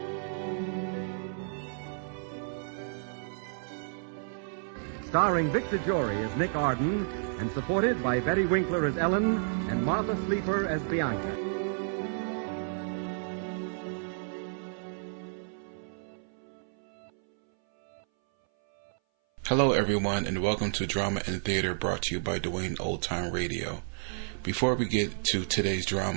Starring Vic DeJory as Nick Arden, and supported by Betty Winkler as Ellen and Martha Sleeper as Bianca. Hello everyone, and welcome to Drama and Theater, brought to you by Dwayne Old Time Radio. Before we get to today's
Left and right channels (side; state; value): left; silent; 57 dB below the other